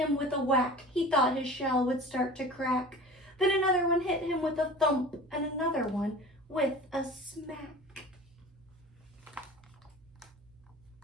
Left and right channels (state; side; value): noise; right; hum, 30 dB below the sound